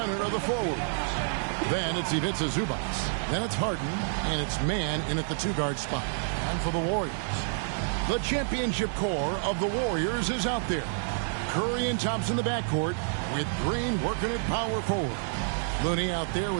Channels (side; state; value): left; silent; digital silence